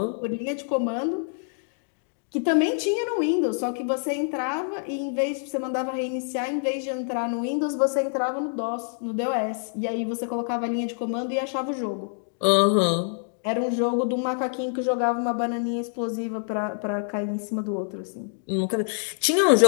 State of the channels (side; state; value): right; silent; digital silence